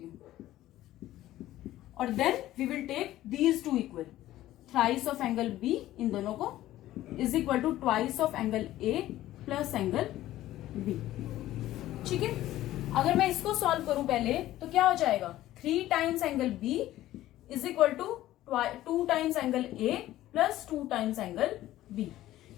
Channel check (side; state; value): right; quieter; 14.6 dB